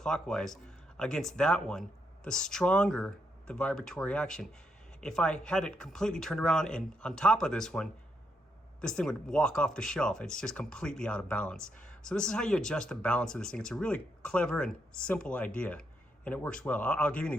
against that one, the stronger the vibratory action. if I had it completely turned around and on top of this one, this thing would walk off the shelf. It's just completely out of balance. So this is how you adjust the balance of this thing. It's a really clever and simple idea, and it works well. I'll give you an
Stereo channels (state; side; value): normal; both; correlation 0.78